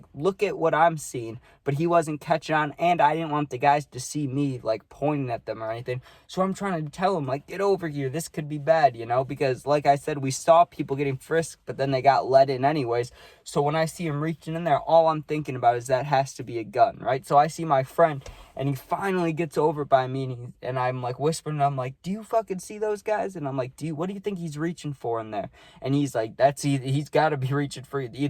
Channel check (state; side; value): identical; both; correlation 1.00